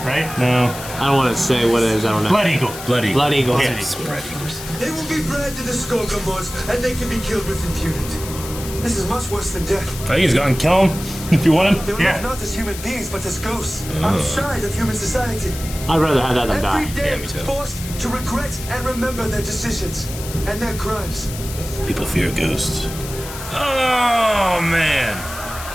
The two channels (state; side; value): noise; left; hiss, 11 dB below the sound